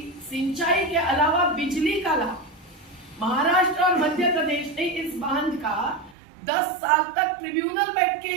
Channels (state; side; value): drops out; left; at 6.2 s